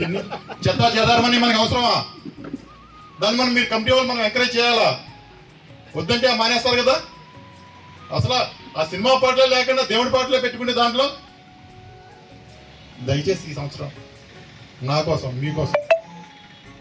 చెదారమని మనకి అవసరమా? దాన్ని మీరు కమిటీ వాళ్ళు మనం ఎంకరేజ్ చేయాలా? వద్దంటే మానేస్తారు కదా. అసలు ఆ సినిమా పాటలే లేకుండా దేవుడి పాటలే పెట్టుకునే దాంట్లో దయచేసి ఈ సంవత్సరం నా కోసం మీకోసం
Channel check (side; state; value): both; identical; correlation 1.00